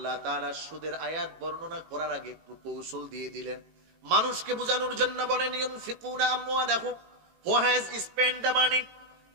তাআলা সুদের আয়াত বর্ণনা করার আগে একটু কৌশল দিয়ে দিলেন মানুষকে বোঝানোর জন্য। বলেন ইউনফিকুনা আমওয়ালাহুম, who has spent the money,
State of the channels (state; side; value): late; left; 18 ms